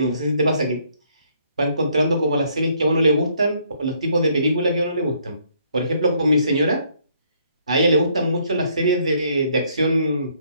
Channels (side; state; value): both; inverted; correlation -0.67